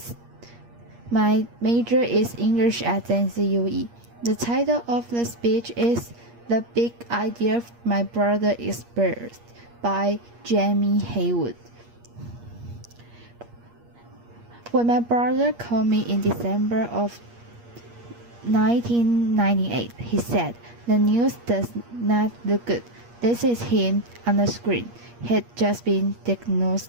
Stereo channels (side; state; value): left; late; 8.5 ms